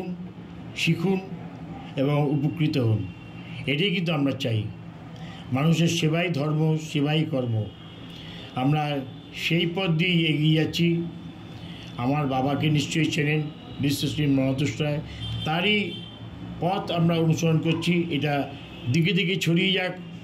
শিখুন এবং উপকৃত হন। এটাই কিন্তু আমরা চাই। মানুষের সেবাই ধর্ম, সেবাই কর্ম। আমরা সেই পথ দিয়েই এগিয়ে যাচ্ছি। আমার বাবাকে নিশ্চয়ই চেনেন, বিশ্বশ্রী মহাতোষ রায়, তারই পথ আমরা অনুসরণ করছি। এটা দিকে দিকে ছড়িয়ে যাক,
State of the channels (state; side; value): identical; both; correlation 1.00